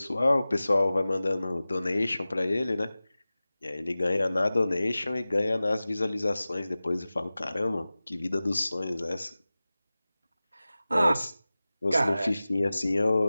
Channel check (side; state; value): both; inverted; correlation -0.97